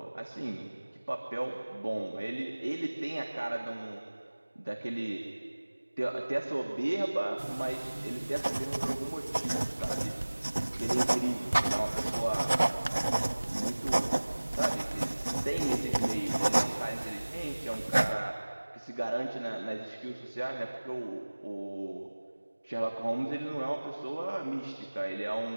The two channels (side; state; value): both; inverted; correlation -1.00